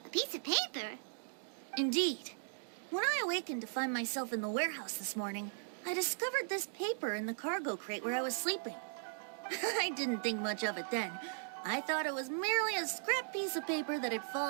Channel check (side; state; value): left; silent; digital silence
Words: A piece of paper? Indeed. When I awakened to find myself in the warehouse this morning, I discovered this paper in the cargo crate where I was sleeping. I didn't think much of it then. I thought it was merely a scrap piece of paper that had